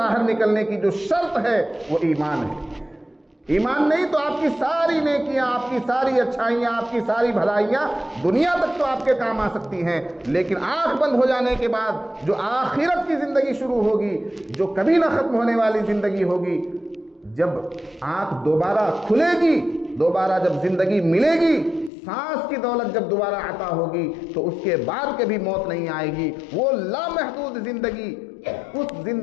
نکلنے کی جو شرط ہے وہ ایمان ہے۔ ایمان نہیں تو آپ کی ساری نیکیاں، آپ کی ساری اچھائیاں، آپ کی ساری بھلائیاں دنیا تک تو آپ کے کام آ سکتی ہیں، لیکن آنکھ بند ہو جانے کے بعد جو آخرت کی زندگی شروع ہوگی، جو کبھی نہ ختم ہونے والی زندگی ہوگی، جب آنکھ دوبارہ کھلے گی، دوبارہ جب زندگی ملے گی، سانس کی دولت جب دوبارہ عطا ہوگی، تو اس کے بعد کبھی موت نہیں آئے گی، وہ لامحدود زندگی۔ اس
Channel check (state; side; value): drops out; right; at 21.9 s